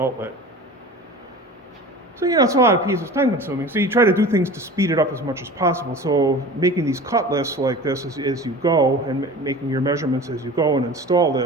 So, it's a lot of pieces, time consuming. So you try to do things to speed it up as much as possible. So making these cut lists like this as you go, and making your measurements as you go and install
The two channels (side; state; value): both; normal; correlation 0.37